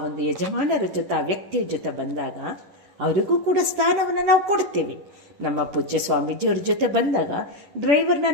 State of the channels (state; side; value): late; left; 11 ms